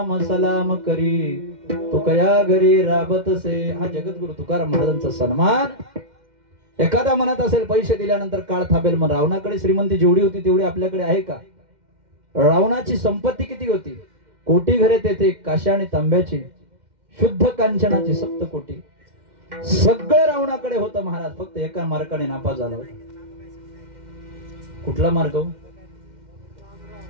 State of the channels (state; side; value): late; left; 2.1 ms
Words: सलाम करी तुकया घरी राबतसे. हा जगद्गुरु तुकाराम महाराजांचा सन्मान. एखादा म्हणत असेल पैसे दिल्यानंतर काळ थांबेल, मग रावणाकडे श्रीमंती जेवढी होती तेवढी आपल्याकडे आहे का? रावणाची संपत्ती किती होती? कोटी घरे तेथे काश्या आणि तांब्याची, शुद्ध कांचनाची 7 कोटी. सगळं रावणाकडे होतं महाराज. फक्त एका मार्गाने नापास झाला होता. कुठला मार्ग?